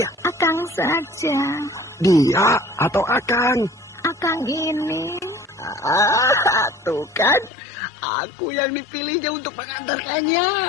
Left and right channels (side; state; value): right; drops out; at 7.5 s